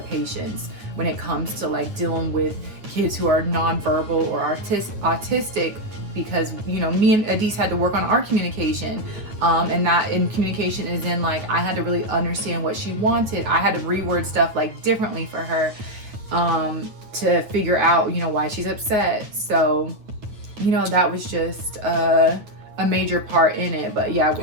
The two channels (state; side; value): late; left; 9.1 ms